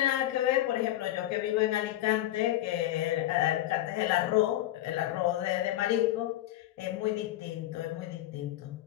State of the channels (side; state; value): right; quieter; 14.5 dB